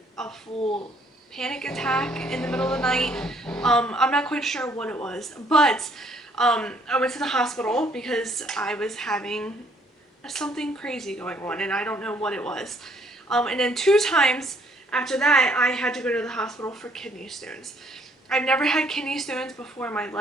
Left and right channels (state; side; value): normal; both; correlation 0.64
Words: a full panic attack in the middle of the night. I'm not quite sure what it was, but I went to the hospital because I was having something crazy going on and I don't know what it was. And then 2 times after that I had to go to the hospital for kidney stones. I've never had kidney stones before in my